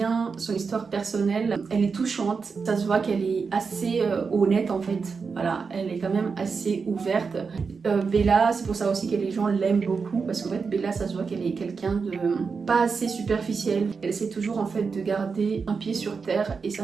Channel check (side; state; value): left; quieter; 5.2 dB